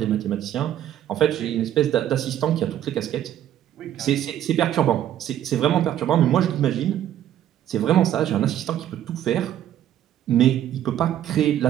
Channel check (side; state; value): left; quieter; 11.4 dB